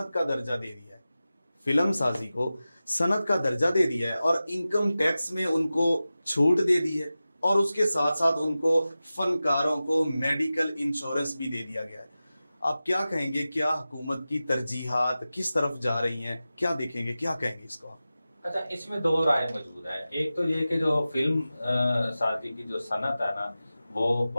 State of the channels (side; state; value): both; inverted; correlation -0.95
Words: का दर्जा दे दिया है, फिल्म साजी को सनत का दर्जा दे दिया है, और इनकम टैक्स में उनको छूट दे दी है, और उसके साथ साथ उनको फनकारों को मेडिकल इंश्योरेंस भी दे दिया गया है। आप क्या कहेंगे, क्या हुकूमत की तरजीहात किस तरफ जा रही हैं, क्या देखेंगे, क्या कहेंगे इसको आप? अच्छा, इसमें 2 राय मौजूद है। एक तो ये कि जो फिल्म साजी की जो सनत है ना, वो